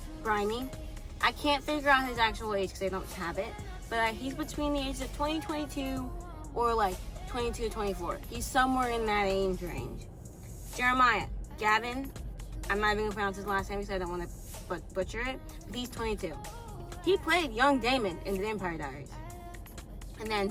Brimey. I can't figure out his actual age because I don't have it. But he's between the ages of 20, 22, or like 22, 24. He's somewhere in that age range. Jeremiah, Gavin, I'm not even going to pronounce his last name because I don't want to butcher it, but he's 22. He played young Damon in The Vampire Diaries. And then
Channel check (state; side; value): identical; both; correlation 1.00